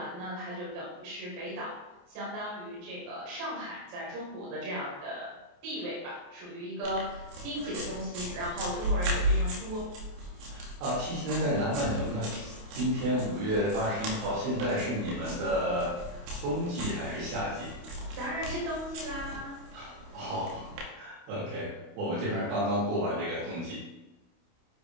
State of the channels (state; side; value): late; left; 28 ms